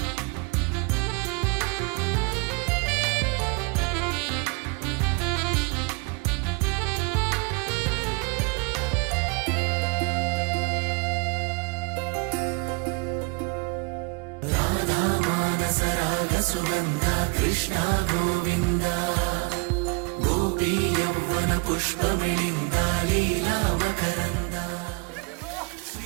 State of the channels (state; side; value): quieter; left; 30.7 dB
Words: సుగంధ కృష్ణ గోవింద గోపీ యౌవన పుష్పమిళింద లీలా మకరంద